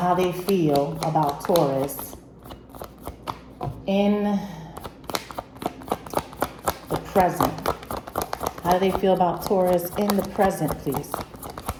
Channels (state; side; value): identical; both; correlation 1.00